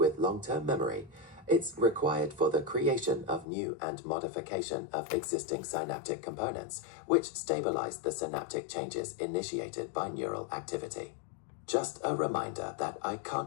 long-term memory. It's required for the creation of new and modification of existing synaptic components, which stabilize the synaptic changes initiated by neural activity. Just a reminder that I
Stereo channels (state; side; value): drops out; right; at 3.5 s